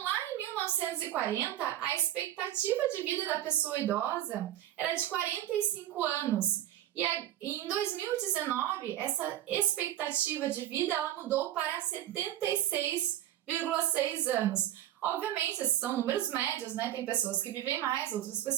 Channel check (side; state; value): left; quieter; 12.7 dB